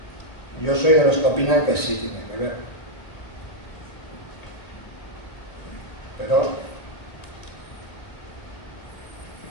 Yo soy de los que opinan que sí tiene que ver. Pero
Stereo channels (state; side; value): late; right; 1.9 ms